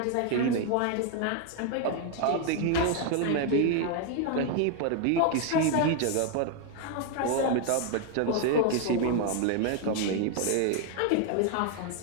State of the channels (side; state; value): both; different; correlation 0.01